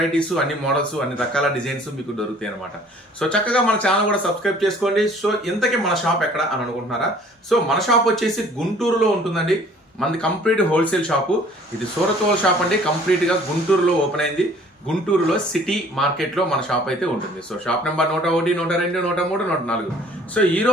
అన్ని మోడల్స్, అన్ని రకాల డిజైన్స్ మీకు దొరుకుతాయి అనమాట. సో చక్కగా మన ఛానల్ కూడా సబ్స్క్రైబ్ చేసుకోండి. సో ఇంతకీ మన షాప్ ఎక్కడ అని అనుకుంటున్నారా? సో మన షాప్ వచ్చేసి గుంటూరులో ఉంటుందండి. మనది కంప్లీట్ హోల్సేల్ షాపు. ఇది సూరత్ హోల్ షాప్ అండి. కంప్లీట్ గా గుంటూరులో ఓపెన్ అయింది. గుంటూరులో సిటీ మార్కెట్ లో మన షాప్ అయితే ఉంటుంది. So shop number 101, 102, 103, 104. సో ఈ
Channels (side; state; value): both; normal; correlation 0.54